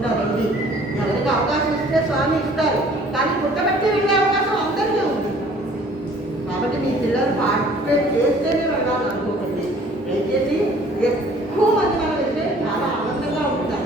రండి. ఎవరికి అవకాశం ఇస్తే స్వామి ఇస్తారు, కానీ పుట్టబట్టి వెళ్ళే అవకాశం అందరికీ ఉంది. కాబట్టి మీ పిల్లలు పార్టిసిపేట్ చేస్తేనే వెళ్ళాలని అనుకోకండి. దయచేసి ఎక్కువ మంది మనం వెళ్తే చాలా ఆనందంగా ఉంటుంది.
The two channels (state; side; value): normal; both; correlation 0.54